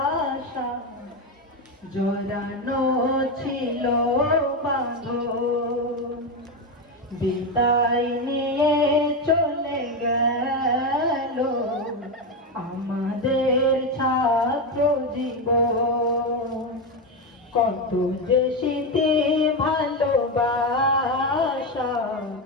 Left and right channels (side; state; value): both; normal; correlation 0.12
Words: জড়ানো ছিল বাঁধন। বিদায় নিয়ে চলে গেল আমাদের ছাত্র জীবন, কত যে স্মৃতি ভালোবাসা